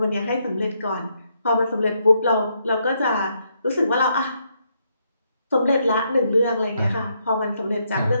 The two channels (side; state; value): both; inverted; correlation -0.76